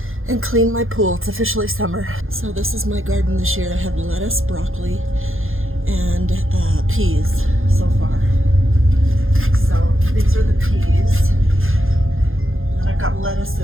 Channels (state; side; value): late; left; 0.60 ms